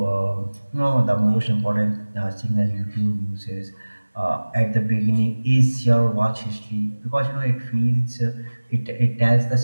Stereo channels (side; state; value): both; inverted; correlation -1.00